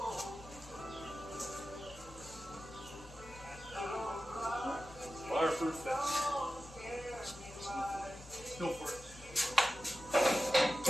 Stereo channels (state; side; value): noise; left; hum, 22 dB below the sound